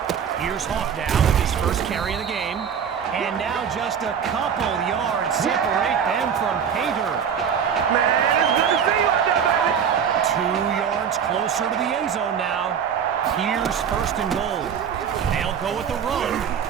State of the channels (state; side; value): quieter; left; 7.6 dB